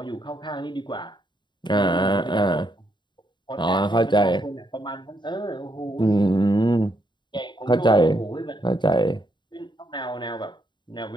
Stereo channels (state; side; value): late; right; 0.22 ms